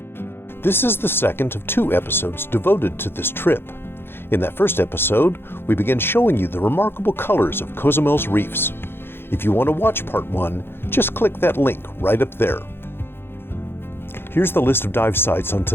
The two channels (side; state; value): right; late; 0.11 ms